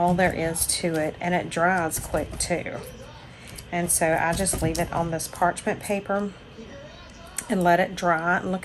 there is to it. And it dries quick, too. And so I just leave it on this parchment paper and let it dry. And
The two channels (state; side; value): identical; both; correlation 1.00